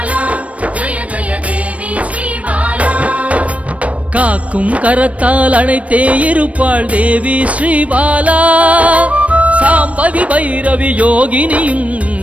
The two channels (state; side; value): late; left; 0.065 ms